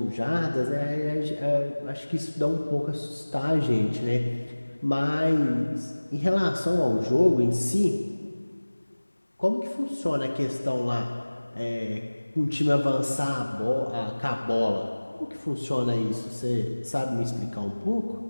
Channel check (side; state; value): both; inverted; correlation -1.00